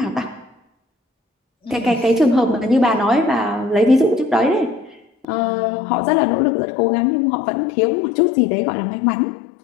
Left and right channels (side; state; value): right; drops out; at 5.2 s